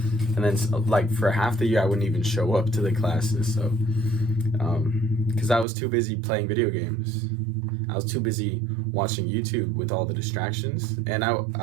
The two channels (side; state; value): left; drops out; at 5.7 s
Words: And then like for half the year I wouldn't even show up to the classes, so because I was too busy playing video games. I was too busy watching YouTube with all the distractions, and